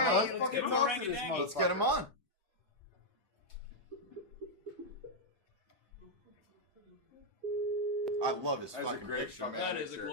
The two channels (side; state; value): both; normal; correlation -0.03